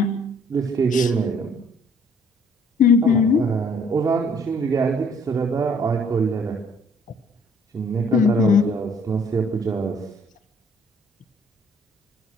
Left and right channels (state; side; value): normal; both; correlation 0.59